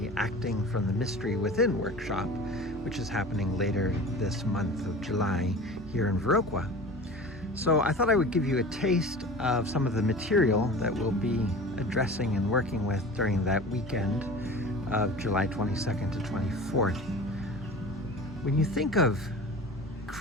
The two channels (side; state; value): both; normal; correlation 0.37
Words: Acting from the Mystery Within workshop, which is happening later this month of July here in Viroqua. So I thought I would give you a taste of some of the material that we'll be addressing and working with during that weekend of July 22nd to 24th. When you think of